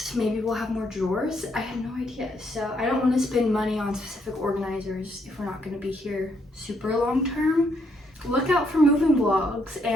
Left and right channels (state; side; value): normal; both; correlation 0.74